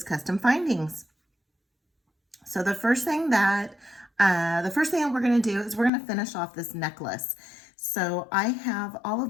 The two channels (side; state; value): right; drops out; at 5.9 s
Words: custom findings. So the first thing that we're going to do is we're going to finish off this necklace. So I have all